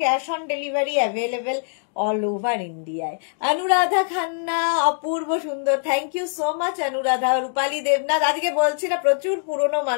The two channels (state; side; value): silent; right; digital silence